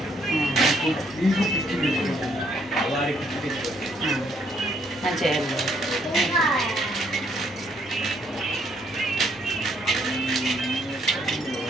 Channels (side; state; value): both; normal; correlation 0.69